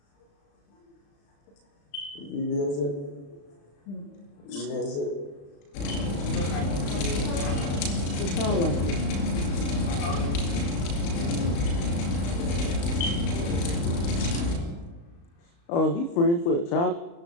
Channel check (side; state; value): right; late; 35 ms